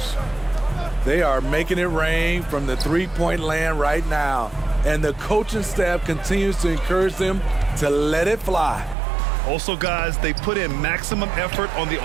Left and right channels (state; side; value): drops out; left; at 9.0 s